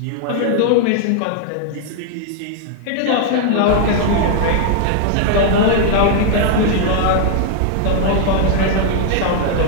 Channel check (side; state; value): both; different; correlation 0.00